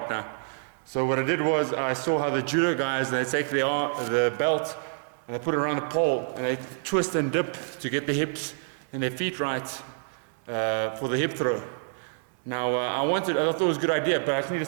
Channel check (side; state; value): left; silent; 60 dB below the other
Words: So what I did was I saw how the judo guys, they take the belt and they put it around the pole and they twist and dip to get the hips and their feet right for the hip throw. Now I thought it was a good idea, but I just needed